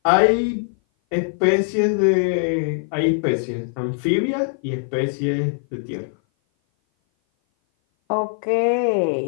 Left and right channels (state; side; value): silent; right; 58 dB below the other